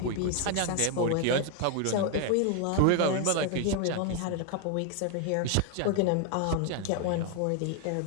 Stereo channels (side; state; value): both; different; correlation 0.01